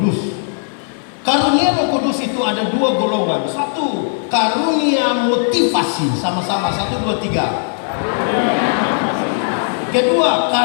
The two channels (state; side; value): silent; right; digital silence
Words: Karunia Roh Kudus itu ada 2 golongan. 1, karunia motivasi. Sama-sama, 1, 2, 3. Kedua,